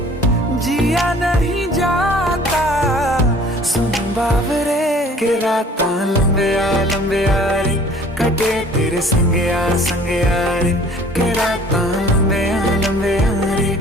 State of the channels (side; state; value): both; normal; correlation 0.52